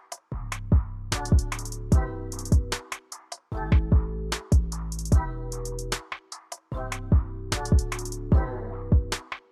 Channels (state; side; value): identical; both; correlation 1.00